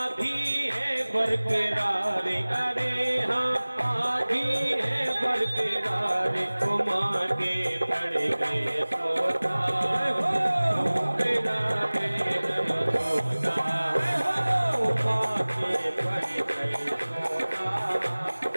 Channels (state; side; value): inverted; both; correlation -1.00